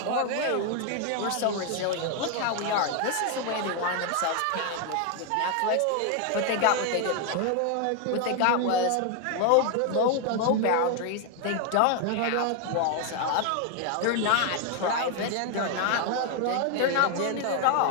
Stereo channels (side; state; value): both; different; correlation 0.01